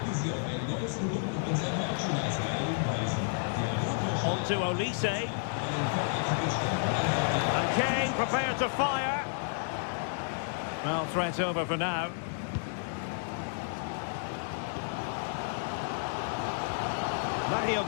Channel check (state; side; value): silent; right; 57 dB below the other